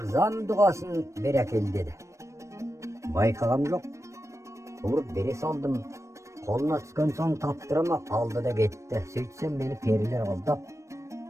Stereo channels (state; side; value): late; left; 0.15 ms